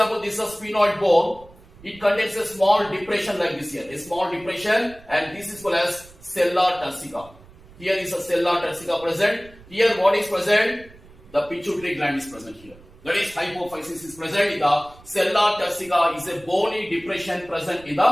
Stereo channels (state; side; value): noise; right; rumble, 23 dB below the sound